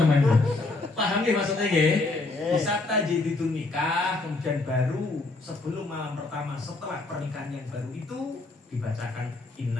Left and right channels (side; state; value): right; quieter; 3.2 dB